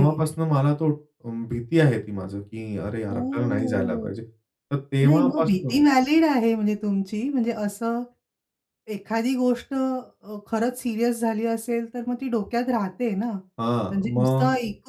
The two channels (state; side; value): identical; both; correlation 1.00